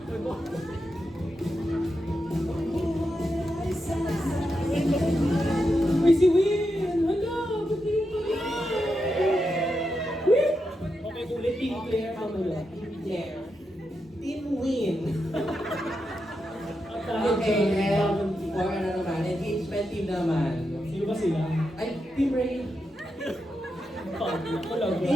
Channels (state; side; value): normal; both; correlation 0.86